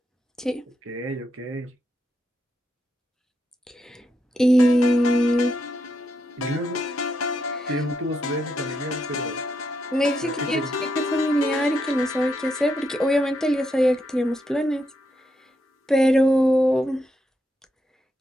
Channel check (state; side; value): normal; both; correlation 0.81